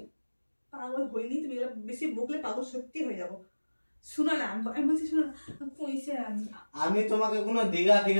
পাগল হইনি, তুমি বেশি বকলে পাগল সত্যি হয়ে যাবো। শুনো না, আমি বলছি শুনো না, পয়সা আমি তোমাকে কোনো দীঘা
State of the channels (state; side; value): inverted; both; correlation -1.00